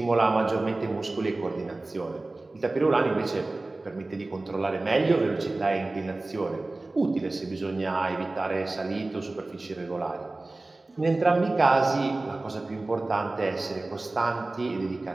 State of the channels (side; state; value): left; quieter; 3.1 dB